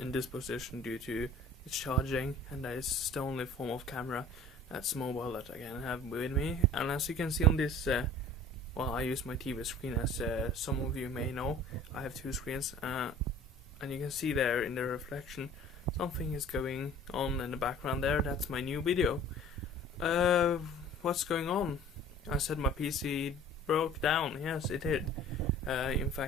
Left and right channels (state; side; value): normal; both; correlation 0.47